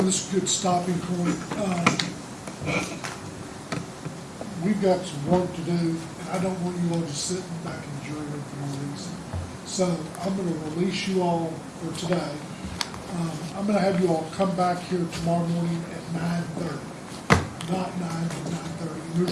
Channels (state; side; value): identical; both; correlation 1.00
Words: this is a good stopping point. We've got some work to do, and I don't want you all just sitting back in the jury room for no reason. So I'm gonna release you all for today. I'm gonna have you all come back here tomorrow morning at 9:30. Not 9, but 9:30. And